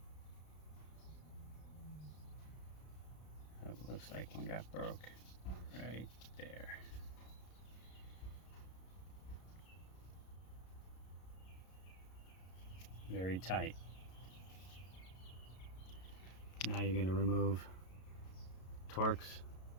It looks like one got broke right there. Very tight. Now you're going to remove Torx.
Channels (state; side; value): late; right; 33 ms